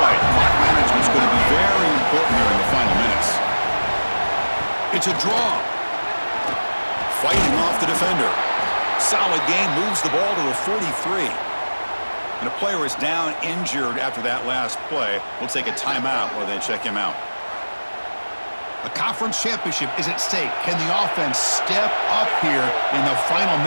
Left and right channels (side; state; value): both; inverted; correlation -1.00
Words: Clock management is going to be very important here in the final minutes. It's a draw. Fighting off the defender. Solid game, moves the ball to the 43. And a player is down injured after that last play. We'll take a timeout while they check him out. A conference championship is at stake. Can the offense step up here in the final